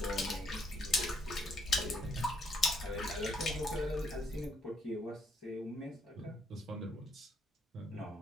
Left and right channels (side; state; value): both; normal; correlation 0.71